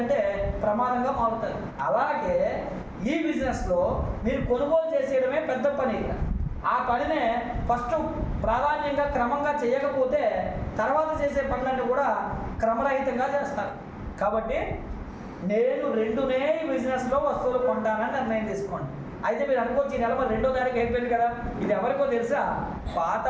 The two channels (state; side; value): identical; both; correlation 1.00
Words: ప్రమాదంగా మారుతుంది. అలాగే ఈ బిజినెస్లో మీరు కొనుగోలు చేసేయడమే పెద్ద పని. ఆ పనినే ఫస్ట్ ప్రాధాన్యంగా క్రమంగా చేయకపోతే తర్వాత చేసే పనులన్నీ కూడా క్రమరహితంగా చేస్తారు. కాబట్టి నేను 2నే ఈ బిజినెస్లో వస్తువులు కొంటానని నిర్ణయం తీసుకోండి. అయితే మీరు అనుకోవచ్చు ఈ నెల మరి 2వ తారీఖు అయిపోయింది కదా, ఇది ఎవరికో తెలుసా? పాత